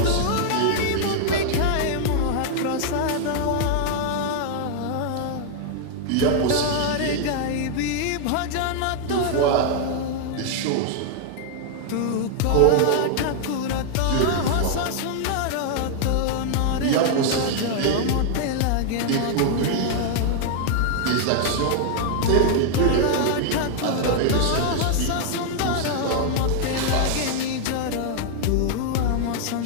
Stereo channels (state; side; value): different; both; correlation 0.00